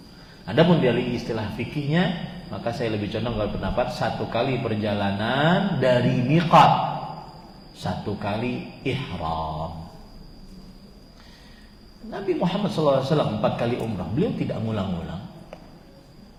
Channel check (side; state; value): both; identical; correlation 1.00